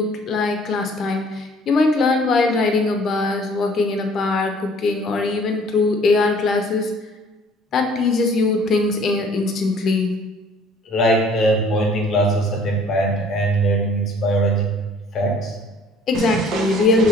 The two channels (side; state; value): both; normal; correlation 0.55